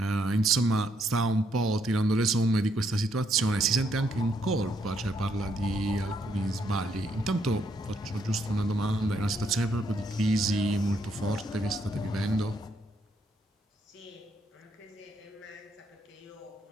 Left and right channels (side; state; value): both; normal; correlation 0.74